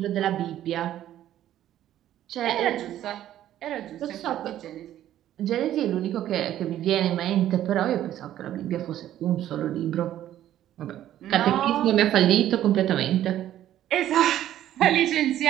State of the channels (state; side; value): quieter; left; 12.2 dB